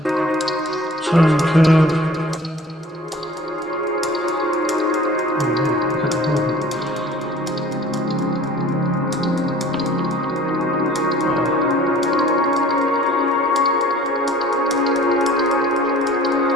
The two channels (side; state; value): both; normal; correlation 0.49